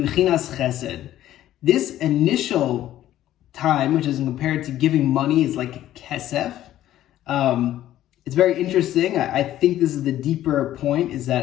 chesed. This initial time, which is compared to giving money, is like kesef. It's very interesting. I think this is the deeper point, is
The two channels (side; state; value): right; quieter; 13.1 dB